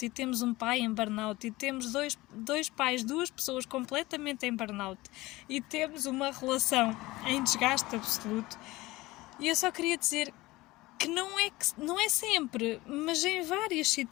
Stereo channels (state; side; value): quieter; right; 19.7 dB